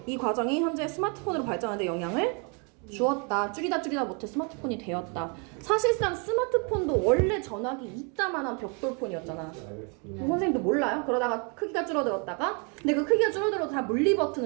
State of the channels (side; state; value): left; quieter; 35.4 dB